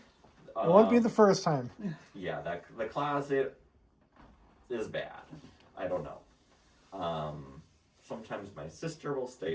won't be the first time. Yeah, the closet is bad. I don't know. Sometimes my sister will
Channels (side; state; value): both; identical; correlation 1.00